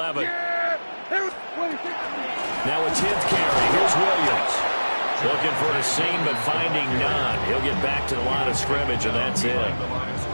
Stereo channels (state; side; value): inverted; both; correlation -1.00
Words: Now a 10th carry. Here's Williams. Looking for a seam, but finding none. He'll get back to the line of scrimmage, and that's it.